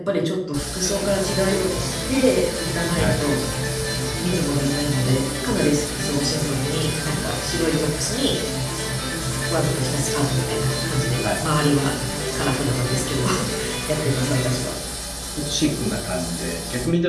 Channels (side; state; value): both; identical; correlation 1.00